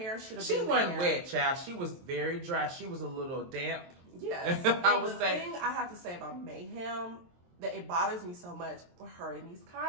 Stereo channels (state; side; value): late; left; 23 ms